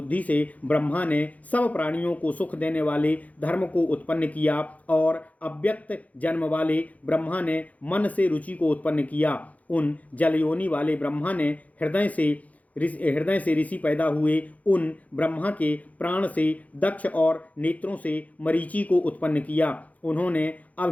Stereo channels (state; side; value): late; right; 0.072 ms